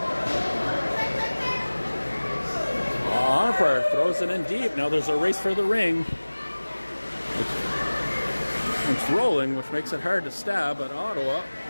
Arnprior throws it in deep. Now there's a race for the ring. It's rolling, which makes it hard to stab, but Ottawa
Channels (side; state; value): both; inverted; correlation -1.00